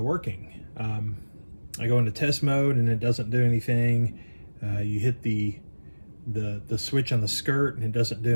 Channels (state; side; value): inverted; both; correlation -1.00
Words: I go into test mode and it doesn't do anything. You hit the switch on the skirt and it doesn't do